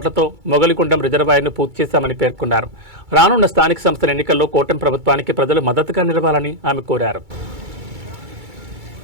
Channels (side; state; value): left; late; 2.3 ms